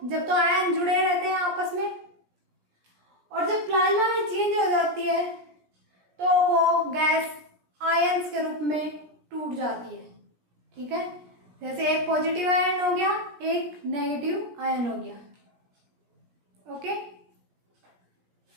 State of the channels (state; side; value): late; left; 17 ms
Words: जब तो आयन जुड़े रहते हैं आपस में, और जब प्लाज्मा में चेंज हो जाती है तो वो गैस आयंस के रूप में टूट जाती है। ठीक है, जैसे एक पॉजिटिव आयन हो गया, एक नेगेटिव आयन हो गया। ओके,